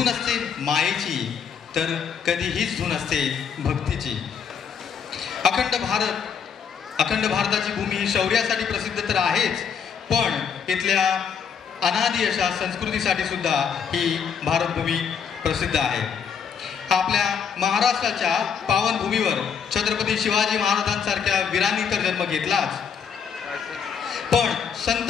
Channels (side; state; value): right; quieter; 7.0 dB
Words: असते मायेची, तर कधी हीच धून असते भक्तीची. अखंड भारताची भूमी ही शौर्यासाठी प्रसिद्ध तर आहेच, पण इथल्या अनादी अशा संस्कृतीसाठी सुद्धा ही भारतभूमी प्रसिद्ध आहे. आपल्या महाराष्ट्राच्या पावनभूमीवर छत्रपती शिवाजी महाराजांसारख्या वीरांनी तर जन्म घेतलाच, पण संत